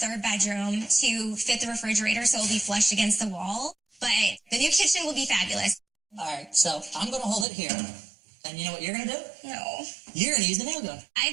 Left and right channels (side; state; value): left; drops out; at 7.5 s